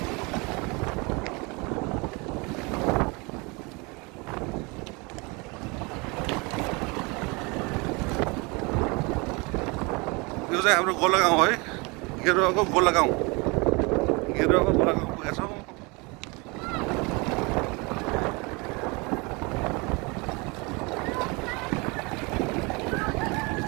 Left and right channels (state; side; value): quieter; left; 27.8 dB